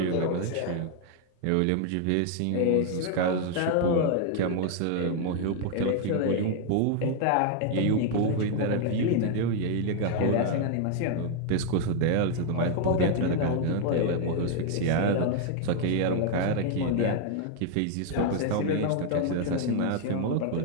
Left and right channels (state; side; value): different; both; correlation 0.00